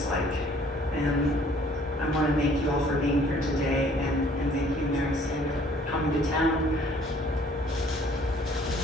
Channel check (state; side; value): normal; both; correlation 0.58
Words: like. And I want to thank you all for being here today, and thank you, Mary Savig, for coming to town.